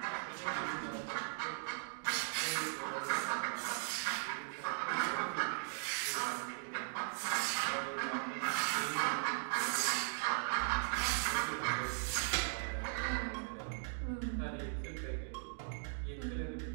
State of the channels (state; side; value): silent; left; digital silence